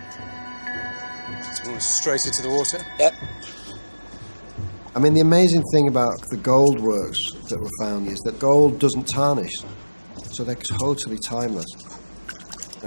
Straight into the water? Yep. I mean, the amazing thing about the gold works that were found is that gold doesn't tarnish, so they're totally timeless.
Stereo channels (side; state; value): both; inverted; correlation -1.00